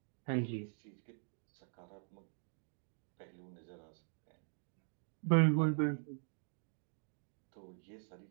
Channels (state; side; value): silent; left; digital silence